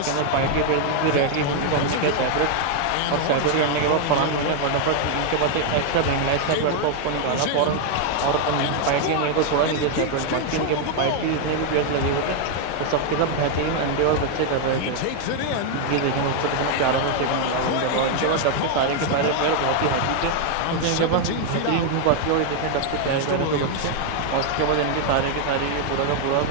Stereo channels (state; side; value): different; both; correlation 0.00